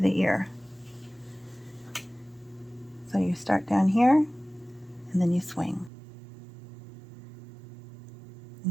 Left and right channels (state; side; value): drops out; left; at 5.9 s